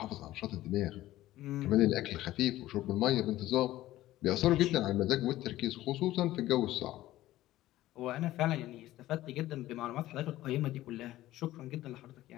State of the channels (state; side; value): quieter; right; 15.4 dB